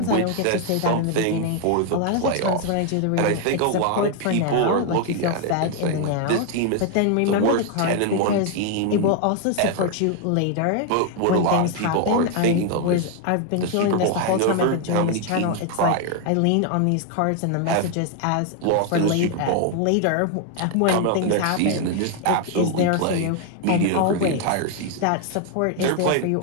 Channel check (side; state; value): both; different; correlation 0.00